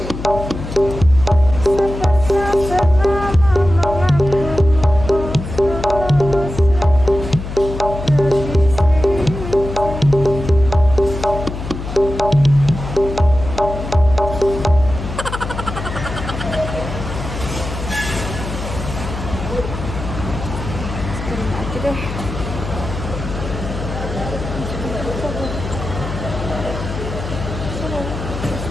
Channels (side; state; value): left; noise; hum, 7 dB below the sound